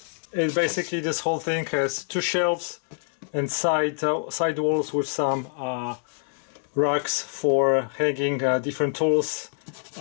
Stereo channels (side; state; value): right; silent; digital silence